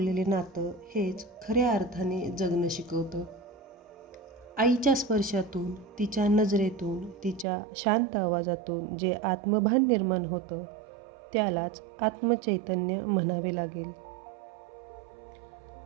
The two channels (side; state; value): left; drops out; at 7.5 s